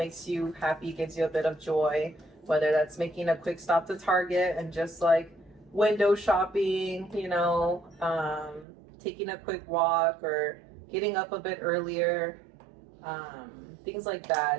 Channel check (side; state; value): left; drops out; at 8.7 s